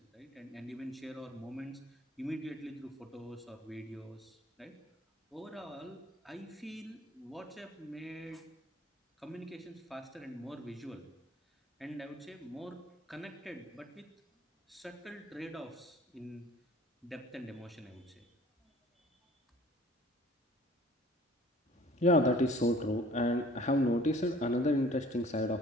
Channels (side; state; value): both; normal; correlation 0.52